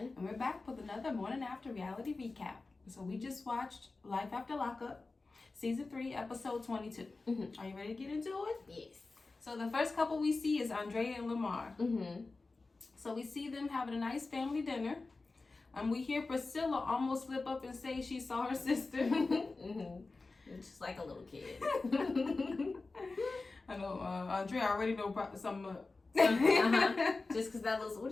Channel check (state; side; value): quieter; right; 3.6 dB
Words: And we're back with another Morning After reality recap. So we just watched Life After Lockup, Season 3, Episode 22. Are you ready to get into it? Yes. So the first couple we see is Andrea and Lamar. Mm-hmm. So we see them having a nice family dinner. We hear Priscilla almost slip up and say she saw her sister. Just like a little kid. I know, Andrea already know some... Just because that was, what